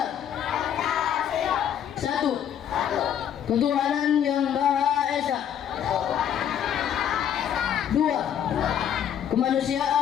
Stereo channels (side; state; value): right; quieter; 9.5 dB